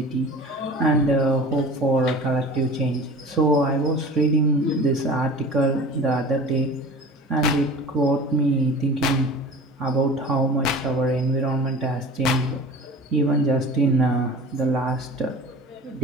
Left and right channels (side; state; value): both; normal; correlation 0.38